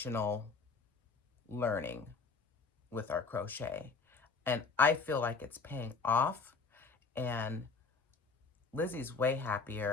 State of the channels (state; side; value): quieter; right; 4.6 dB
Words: learning with our crochet. And I feel like it's paying off and Lizzie's way